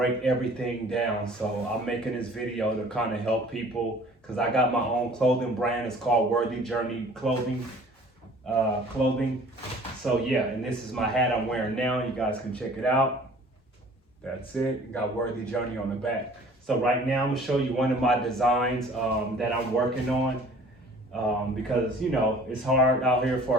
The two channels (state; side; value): normal; both; correlation 0.50